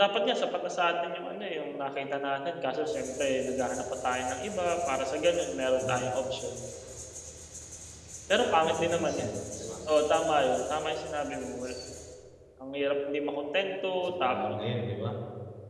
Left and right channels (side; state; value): both; identical; correlation 1.00